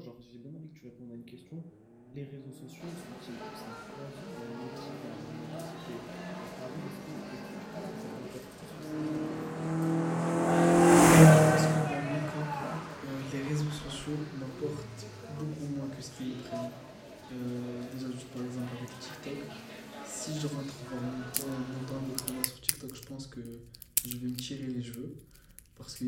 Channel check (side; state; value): both; identical; correlation 1.00